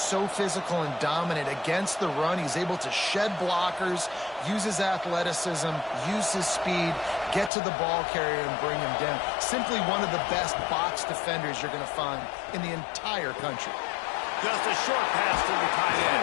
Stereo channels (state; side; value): drops out; right; at 7.5 s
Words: so physical and dominant against the run. He's able to shed blockers, use his athleticism, use his speed, get to the ball carrier and bring him down. Simply one of the best box defenders you're going to find in the entire country. Just a short pass to the tight